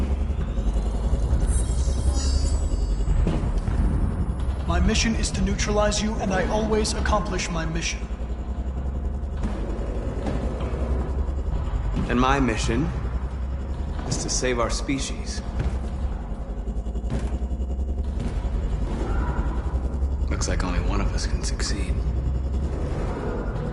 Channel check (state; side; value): identical; both; correlation 1.00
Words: My mission is to neutralize you, and I always accomplish my mission. And my mission is to save our species. Looks like only one of us can succeed.